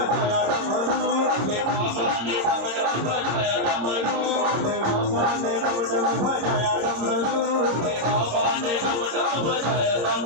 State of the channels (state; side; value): late; left; 26 ms